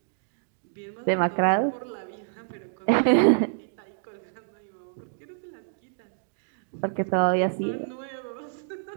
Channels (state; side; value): silent; left; digital silence